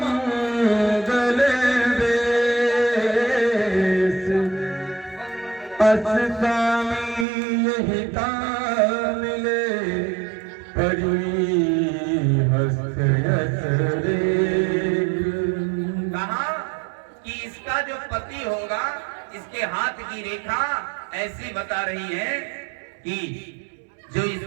वेश, अस स्वामी यही मिले परी हस्त यस रेख। कहा कि इसका जो पति होगा इसके हाथ की रेखा ऐसी बता रही है कि जो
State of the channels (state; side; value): drops out; left; at 7.2 s